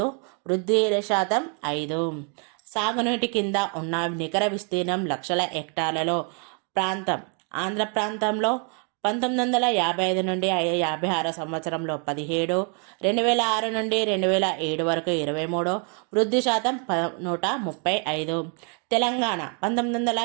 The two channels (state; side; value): quieter; left; 39.5 dB